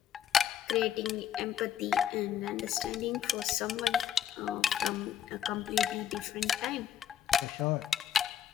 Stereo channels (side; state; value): right; quieter; 9.3 dB